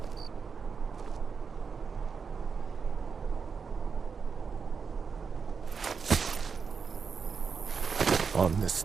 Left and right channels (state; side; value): quieter; left; 5.7 dB